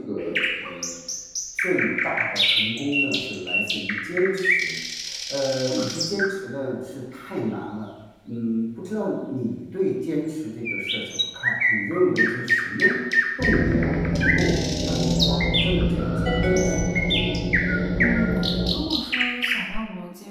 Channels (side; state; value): both; identical; correlation 1.00